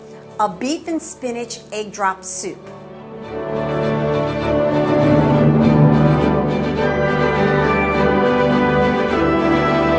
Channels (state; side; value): identical; both; correlation 1.00